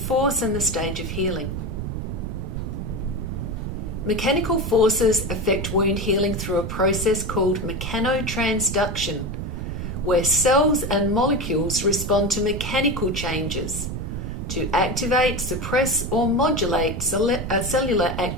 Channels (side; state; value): right; noise; rumble, 5 dB below the sound